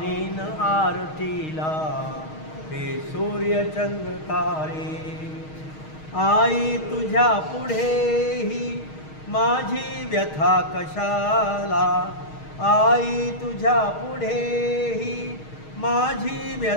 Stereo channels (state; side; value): late; right; 6.4 ms